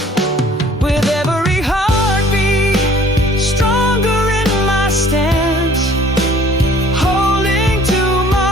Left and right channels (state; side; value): normal; both; correlation 0.54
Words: With every heartbeat, stronger in my stance, holding